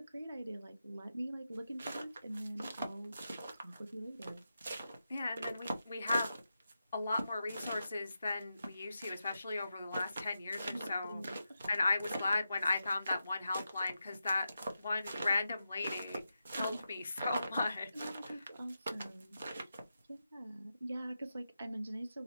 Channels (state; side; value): inverted; both; correlation -0.89